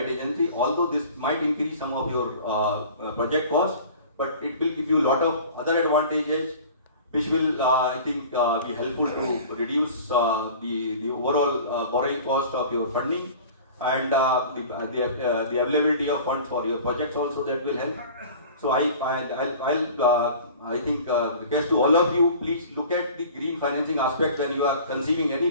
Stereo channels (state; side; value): inverted; both; correlation -0.43